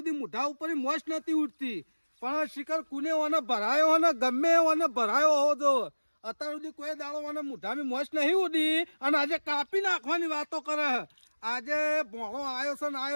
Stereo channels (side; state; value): both; inverted; correlation -1.00